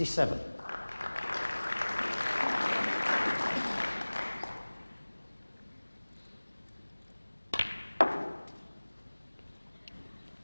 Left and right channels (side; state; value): both; inverted; correlation -1.00